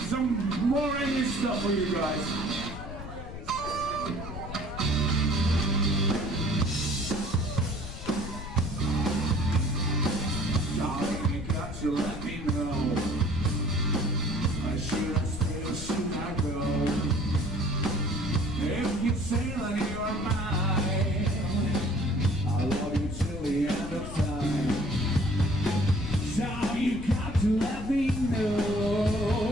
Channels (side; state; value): left; noise; rumble, 10 dB below the sound